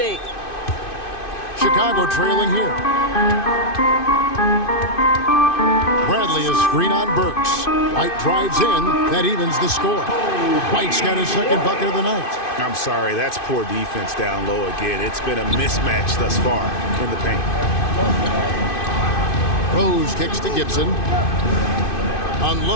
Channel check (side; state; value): right; late; 2.5 ms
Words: Chicago trailing here. Bradley is screen on Burks. White drives in. That evens the score. White's got his second bucket of the night. I'm sorry, that's poor defense down low again. It's been a mismatch thus far in the paint. Rose kicks to Gibson.